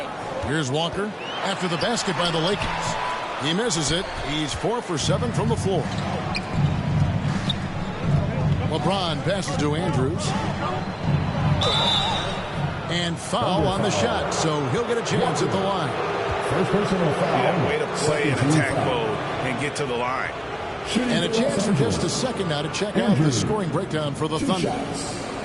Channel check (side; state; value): both; identical; correlation 1.00